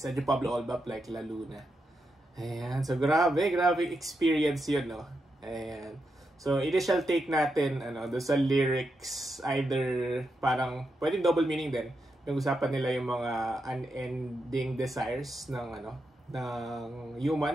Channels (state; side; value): normal; both; correlation 0.85